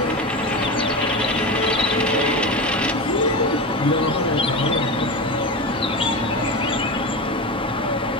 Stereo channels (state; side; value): normal; both; correlation 0.23